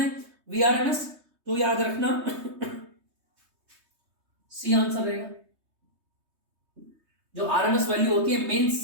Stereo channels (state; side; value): late; left; 3.2 ms